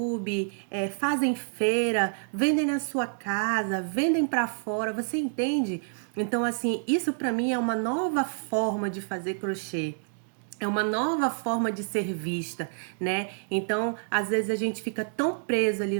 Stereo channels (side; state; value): left; silent; digital silence